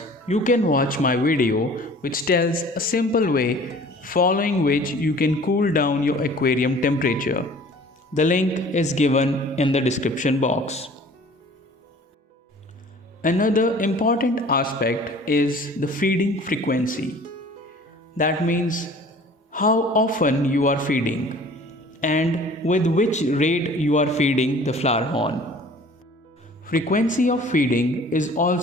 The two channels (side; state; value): both; normal; correlation 0.48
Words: you can watch my video which tells a simple way following which you can cool down your aquarium temperature. The link is given in the description box. Another important aspect is the feeding frequency. That means how often you are feeding and with which rate you are feeding the Flowerhorn. Frequency of feeding is